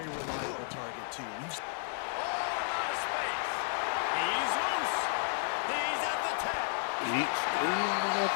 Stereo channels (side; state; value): right; silent; 56 dB below the other